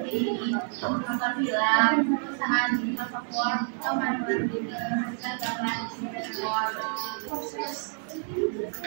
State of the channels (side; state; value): left; silent; 57 dB below the other